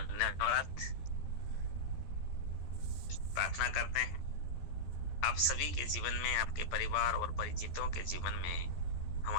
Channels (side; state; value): right; late; 13 ms